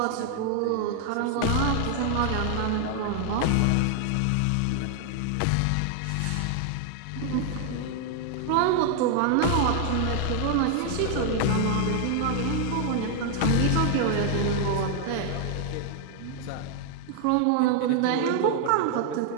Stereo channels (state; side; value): different; both; correlation 0.00